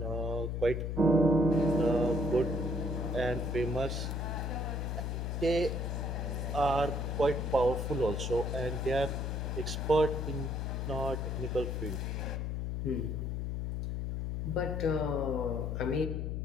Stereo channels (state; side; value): noise; left; hum, 2 dB below the sound